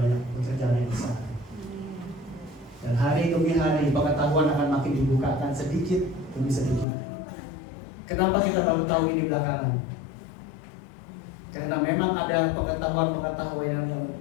pekerjaan yang besar. Dan hari demi hari pengetahuan akan makin dibukakan sedikit demi sedikit. Kenapa kita baru tahu ini belakangan? Karena memang ada pengetahuan yang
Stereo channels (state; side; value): drops out; right; at 6.9 s